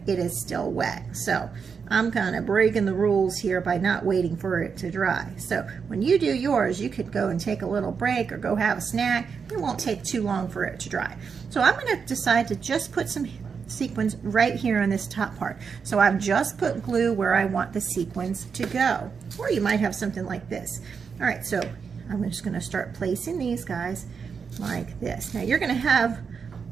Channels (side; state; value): left; quieter; 6.0 dB